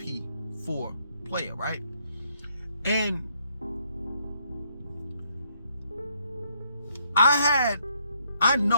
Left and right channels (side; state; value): both; inverted; correlation -0.72